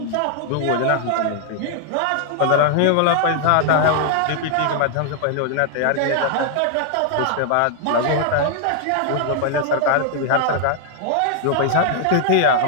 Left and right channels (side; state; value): both; different; correlation 0.00